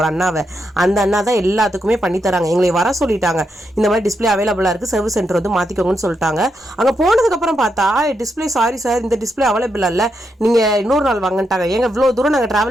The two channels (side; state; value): both; normal; correlation 0.82